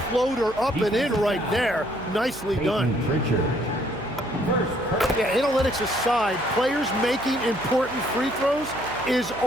floater up and in right there. Nicely done. Yeah, analytics aside, players making important free throws is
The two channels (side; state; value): right; noise; hum, 16 dB below the sound